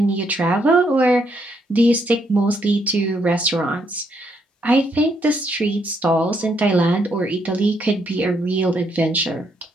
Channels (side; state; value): both; normal; correlation 0.74